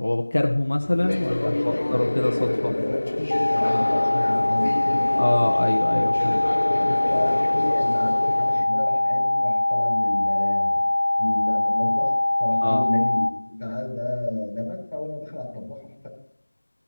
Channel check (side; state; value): both; inverted; correlation -1.00